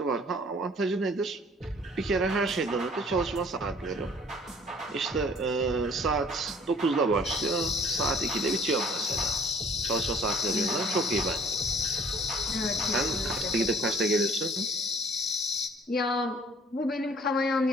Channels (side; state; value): both; normal; correlation 0.55